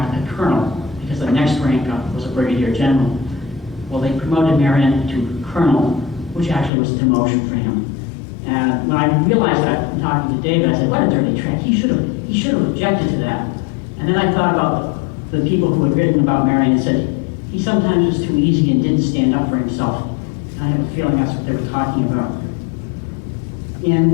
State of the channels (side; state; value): right; drops out; at 6.7 s